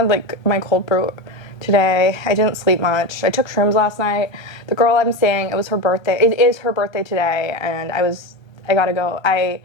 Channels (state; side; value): late; right; 1.2 ms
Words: like my cold brew today. I didn't sleep much. I took shrooms last night. The girl I'm seeing, it was her birthday. It is her birthday today, and I gotta go. I